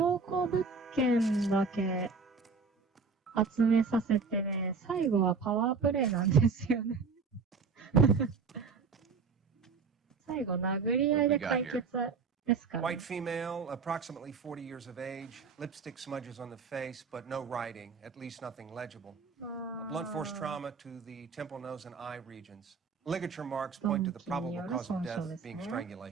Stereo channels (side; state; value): left; quieter; 4.9 dB